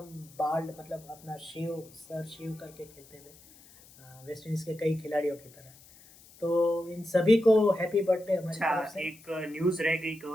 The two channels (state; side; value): noise; left; hiss, 24 dB below the sound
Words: बाल्ड, मतलब अपना सर शेव करके खेलते थे, वेस्ट इंडीज़ के कई खिलाड़ियों की तरह। तो इन सभी को हैप्पी बर्थडे हमारी अच्छा, तरफ से। एक न्यूज रह गई